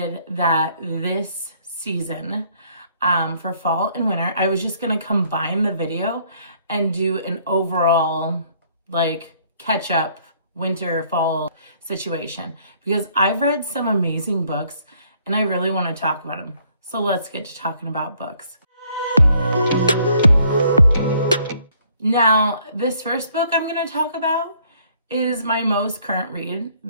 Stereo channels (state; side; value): inverted; both; correlation -0.64